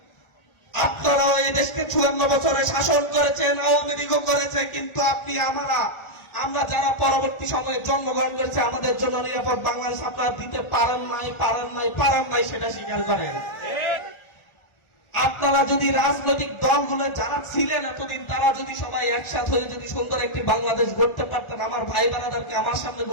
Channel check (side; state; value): right; late; 1.4 ms